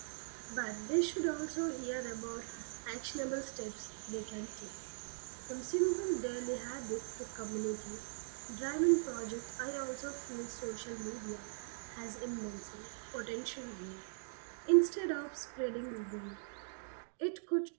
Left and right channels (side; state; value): left; silent; digital silence